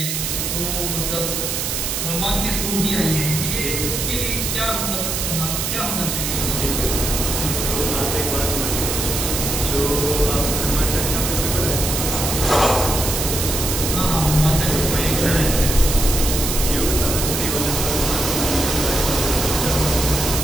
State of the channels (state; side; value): noise; right; hiss, 1 dB below the sound